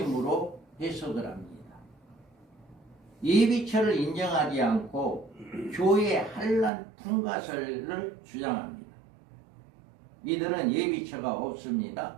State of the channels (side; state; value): left; drops out; at 6.7 s